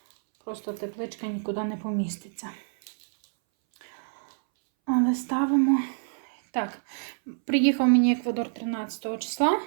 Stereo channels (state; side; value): silent; left; 60 dB below the other